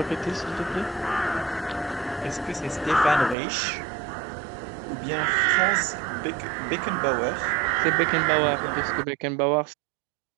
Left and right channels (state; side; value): drops out; left; at 3.4 s